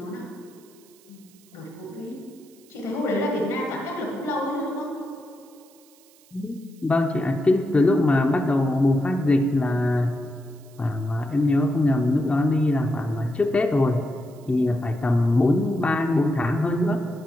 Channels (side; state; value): right; noise; hiss, 28 dB below the sound